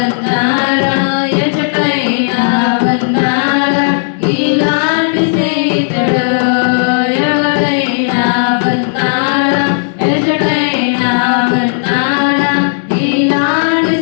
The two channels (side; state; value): right; silent; digital silence